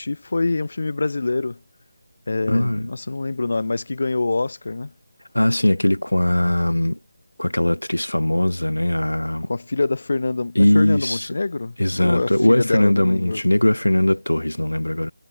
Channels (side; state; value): both; inverted; correlation -1.00